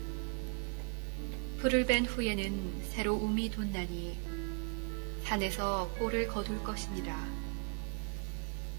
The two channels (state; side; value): quieter; left; 38.1 dB